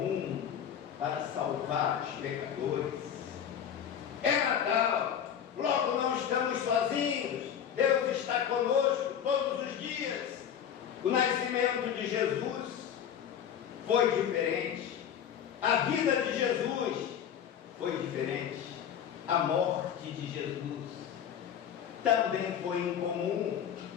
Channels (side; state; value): right; quieter; 8.8 dB